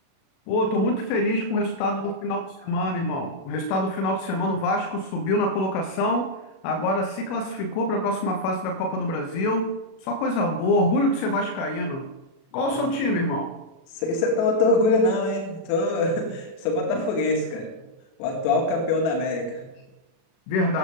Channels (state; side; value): late; right; 37 ms